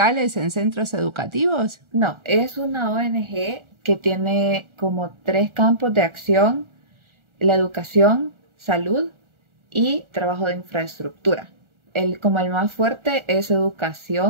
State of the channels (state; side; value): late; left; 1.4 ms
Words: en centros educativos? No, es una ONG que tiene como 3 campos de acción: la educación, salud y trabajo de infraestructura. Como el más fuerte es